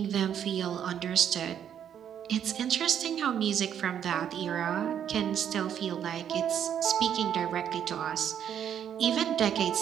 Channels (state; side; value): quieter; left; 9.2 dB